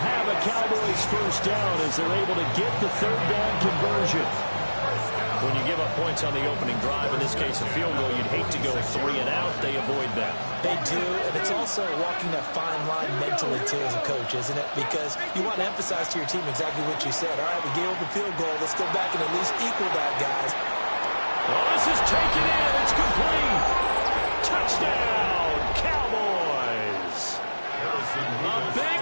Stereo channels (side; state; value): both; inverted; correlation -1.00